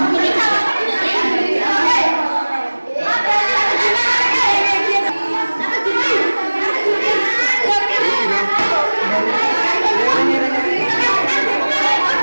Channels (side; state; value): both; inverted; correlation -1.00